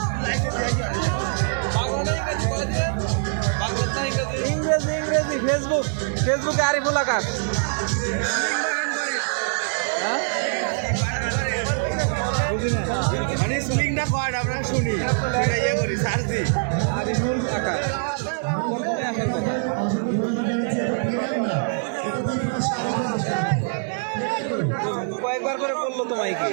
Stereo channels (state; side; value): silent; left; 58 dB below the other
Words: ইংরেজি ইংরেজি ফেসবুক, ফেসবুকে আরিফুল আকাশ। মানে স্প্লিংটা কয় আমরা শুনি, ইয়ে করি সার্চ দিই। আরিফুল আকাশ কয়েকবার করে বললো তো মাইকে